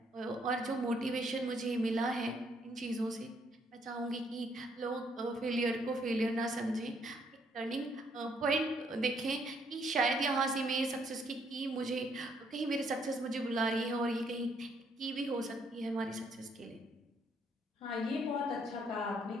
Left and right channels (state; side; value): normal; both; correlation 0.69